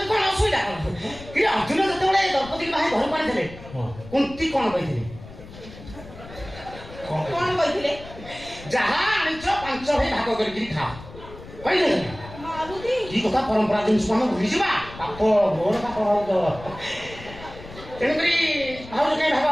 କଣ ଅସୁବିଧା କି ଅର୍ଜୁନ ଯେତେବେଳେ ଦ୍ରୌପଦୀ ଭାଇ ଘରକୁ ଆଣିଥିଲେ କୁନ୍ତି କଣ କହିଥିଲେ କଣ କହିଥିଲେ ଯାହା ଆଣିଛ 5 ଭାଇ ଭାଗ କରିକି ଖାଅ କହିଲେ ମାରୁତି କି କଥା ପରମ୍ପରା ଜିନିଷ ଆମେ ଭୁଲିଯିବା ପାପ ଘୋର ପାପ ଭାଉଜ ତେଣୁକରି ଭାଉଜ କାହିଁ ଭାଗ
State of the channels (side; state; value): left; noise; rumble, 16 dB below the sound